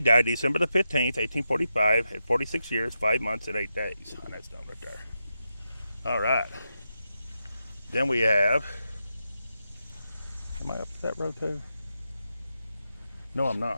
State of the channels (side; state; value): both; inverted; correlation -0.87